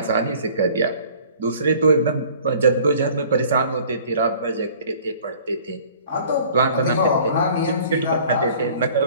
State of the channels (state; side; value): inverted; both; correlation -0.50